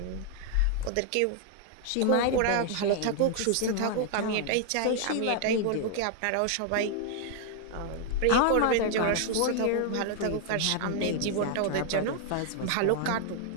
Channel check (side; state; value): both; different; correlation 0.00